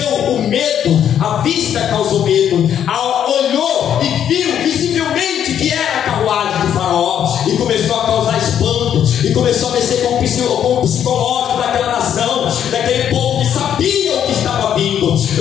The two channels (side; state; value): right; quieter; 9.5 dB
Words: o medo, a vista causou medo, olhou e viu visivelmente que era a carruagem de Faraó, e começou a causar espanto, e começou a mexer com o psicológico daquela nação, daquele povo que sabia o que estava vindo.